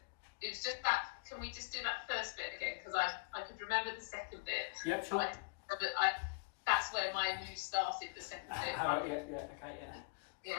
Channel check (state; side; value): quieter; right; 31.3 dB